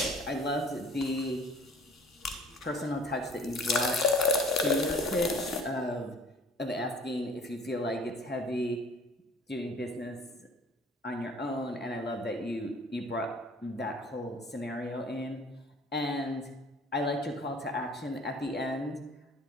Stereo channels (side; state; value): both; normal; correlation 0.49